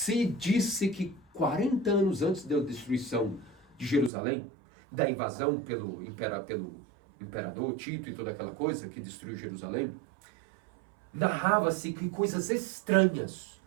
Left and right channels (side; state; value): left; drops out; at 4.1 s